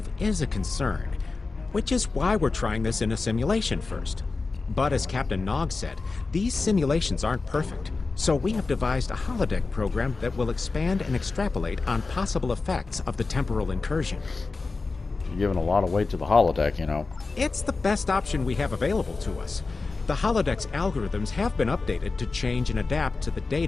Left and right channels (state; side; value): quieter; right; 3.9 dB